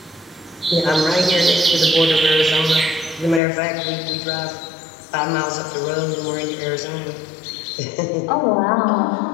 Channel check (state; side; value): drops out; right; at 3.4 s